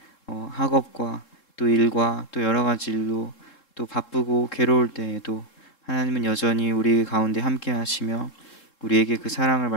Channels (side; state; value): right; late; 3.7 ms